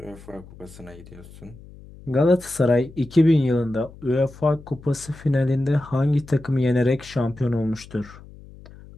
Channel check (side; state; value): left; noise; hum, 20 dB below the sound